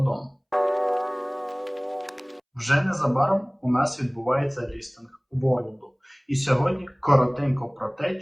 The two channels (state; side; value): identical; both; correlation 1.00